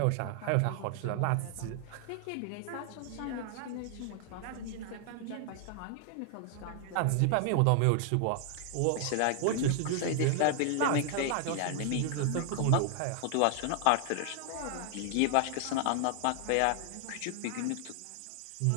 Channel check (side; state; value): both; different; correlation 0.00